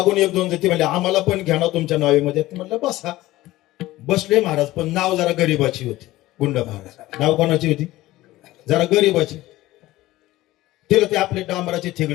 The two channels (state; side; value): quieter; right; 17.1 dB